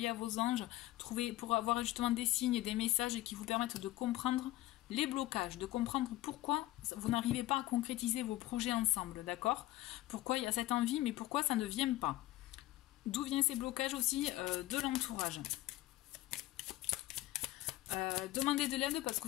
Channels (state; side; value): quieter; right; 16.6 dB